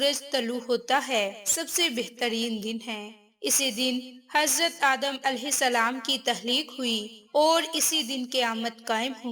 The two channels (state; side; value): identical; both; correlation 1.00